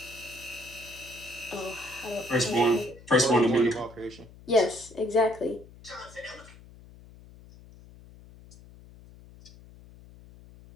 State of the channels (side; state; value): left; noise; hum, 21 dB below the sound